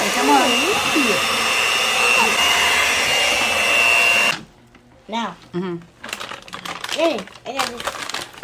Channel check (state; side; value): identical; both; correlation 1.00